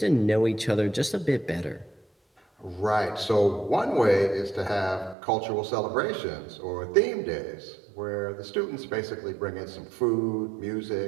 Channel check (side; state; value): left; drops out; at 5.2 s